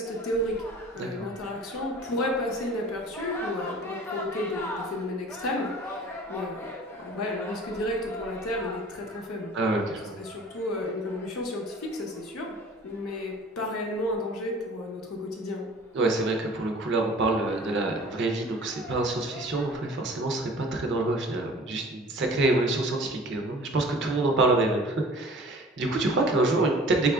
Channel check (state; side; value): normal; both; correlation 0.46